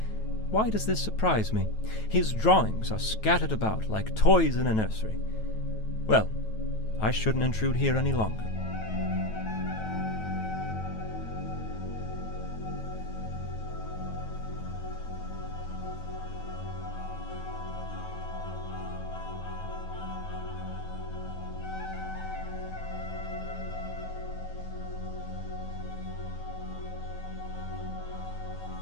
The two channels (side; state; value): right; late; 9.2 ms